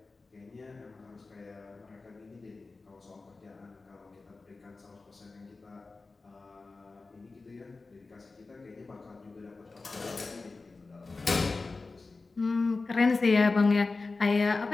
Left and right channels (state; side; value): quieter; right; 3.7 dB